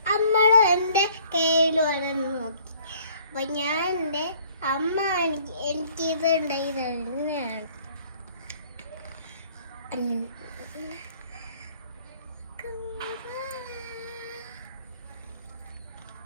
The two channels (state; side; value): inverted; both; correlation -0.58